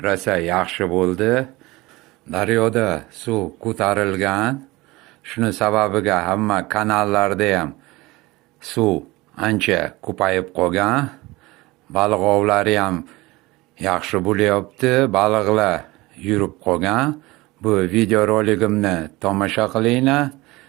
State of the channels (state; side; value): quieter; left; 21.2 dB